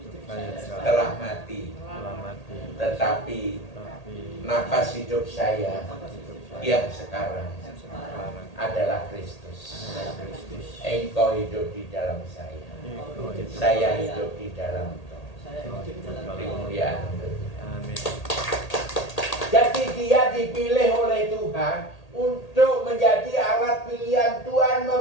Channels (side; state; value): right; late; 1.8 ms